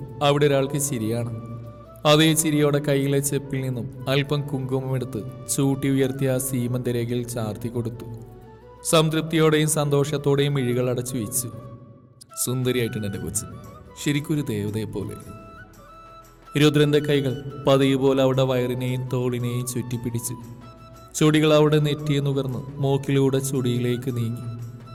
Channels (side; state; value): both; identical; correlation 1.00